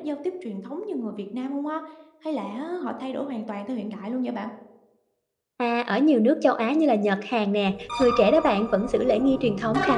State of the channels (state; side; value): identical; both; correlation 1.00